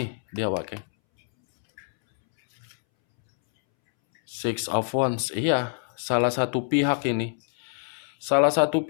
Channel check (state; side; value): silent; right; 61 dB below the other